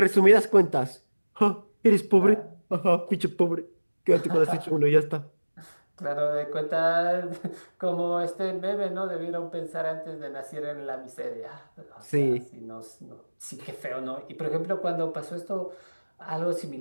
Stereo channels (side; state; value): both; inverted; correlation -1.00